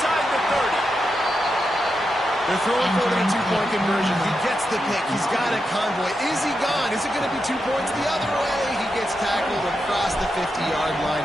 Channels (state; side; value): normal; both; correlation 0.86